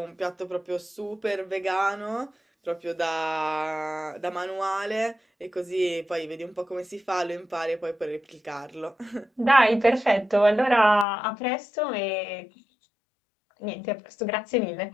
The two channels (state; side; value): drops out; right; at 11.1 s